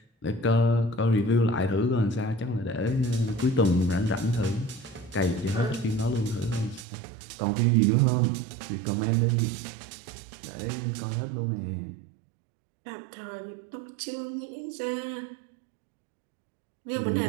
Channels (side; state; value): left; drops out; at 6.9 s